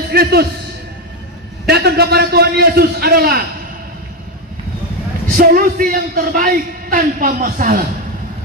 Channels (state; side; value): normal; both; correlation 0.10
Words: Kristus, datang kepada Tuhan Yesus adalah solusi yang terbaik tanpa masalah.